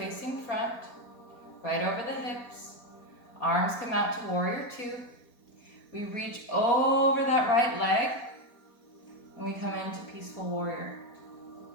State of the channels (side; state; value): right; late; 4.2 ms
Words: front, right over the hips. Arms come out to warrior two. We reach over that right leg and we come into peaceful warrior.